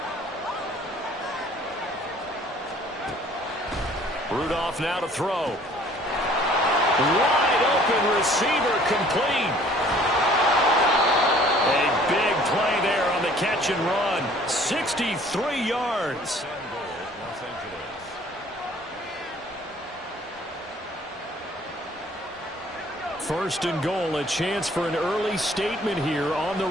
Rudolph now to throw. Wide open receiver complete. A big play there on the catch and run. 63 yards. First and goal, a chance for an early statement here on the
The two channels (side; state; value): both; normal; correlation 0.55